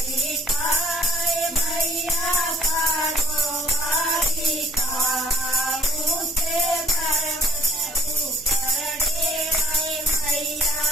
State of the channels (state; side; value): noise; left; hum, 23 dB below the sound